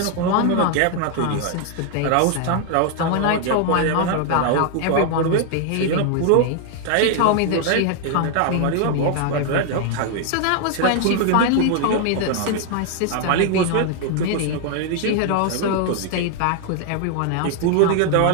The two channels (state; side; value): different; both; correlation 0.00